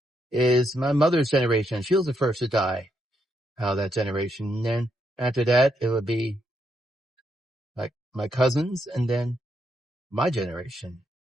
is my mother's generation. She was the first to die out of that generation. And then after that, it would be like my cousins and then my generation.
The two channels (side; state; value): both; normal; correlation 0.78